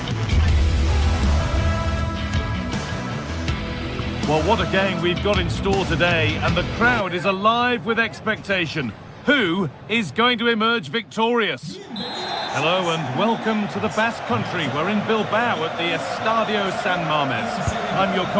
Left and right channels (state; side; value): identical; both; correlation 1.00